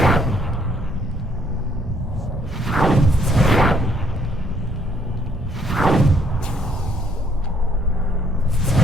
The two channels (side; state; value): both; normal; correlation 0.66